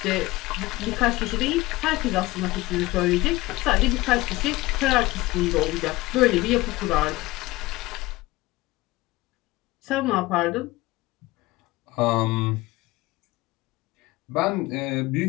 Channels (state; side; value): quieter; right; 19.9 dB